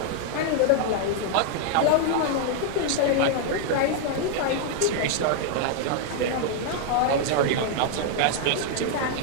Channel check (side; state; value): both; different; correlation 0.00